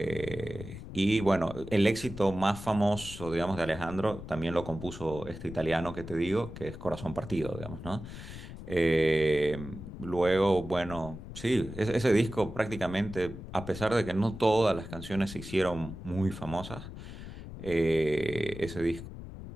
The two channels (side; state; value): left; noise; rumble, 11 dB below the sound